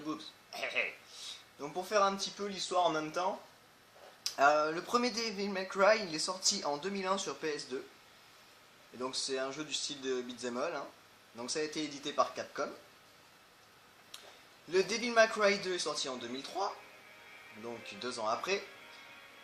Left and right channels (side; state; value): both; identical; correlation 1.00